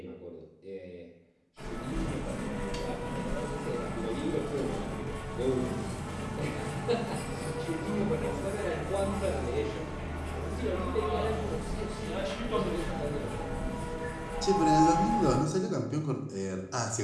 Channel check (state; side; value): identical; both; correlation 1.00